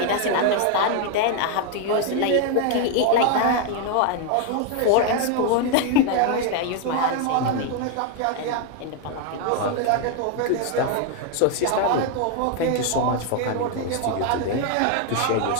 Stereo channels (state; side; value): different; both; correlation 0.01